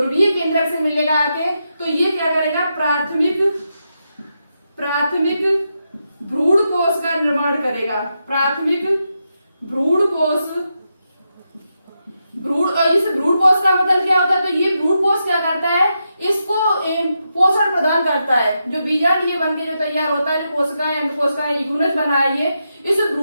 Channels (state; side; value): inverted; both; correlation -0.85